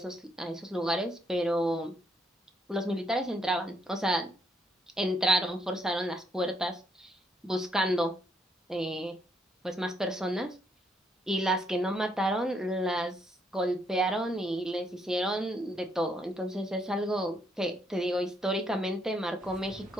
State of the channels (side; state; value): both; normal; correlation 0.73